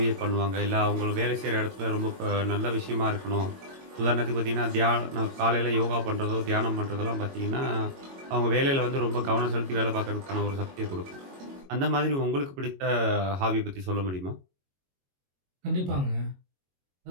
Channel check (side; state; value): left; late; 22 ms